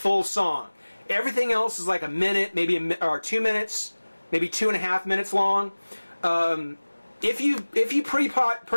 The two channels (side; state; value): both; inverted; correlation -1.00